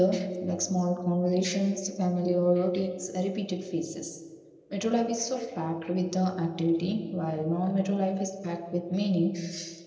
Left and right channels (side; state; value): both; identical; correlation 1.00